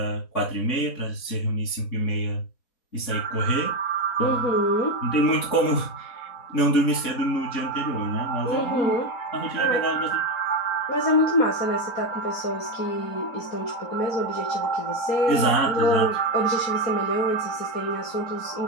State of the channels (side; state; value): right; late; 4.1 ms